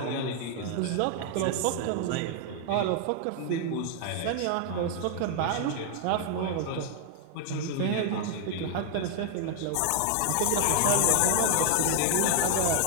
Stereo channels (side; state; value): both; different; correlation 0.00